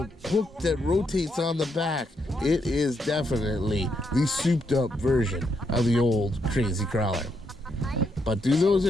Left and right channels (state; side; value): normal; both; correlation 0.78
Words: hook that rotates on the back. It is definitely the souped up version of the old crazy crawler. But do those